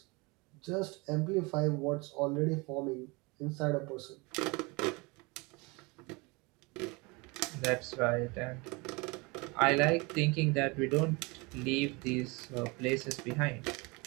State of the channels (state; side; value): quieter; left; 27.0 dB